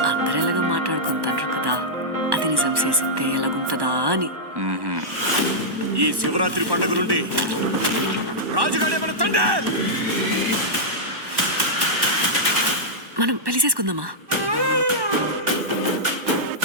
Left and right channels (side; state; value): left; late; 1.1 ms